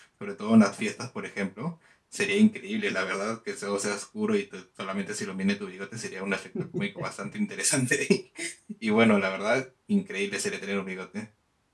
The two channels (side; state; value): both; identical; correlation 1.00